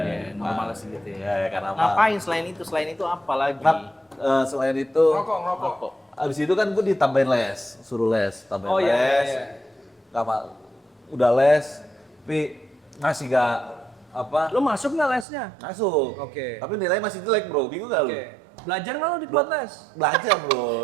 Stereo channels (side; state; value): left; drops out; at 15.2 s